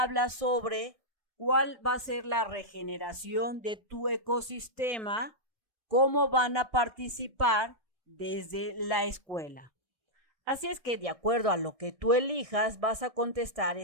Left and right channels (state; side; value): late; left; 1.6 ms